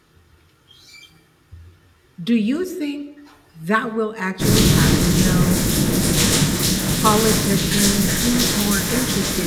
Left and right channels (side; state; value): both; identical; correlation 1.00